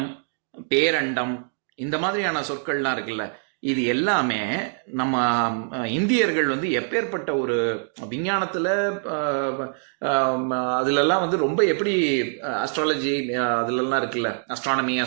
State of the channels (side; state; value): left; silent; digital silence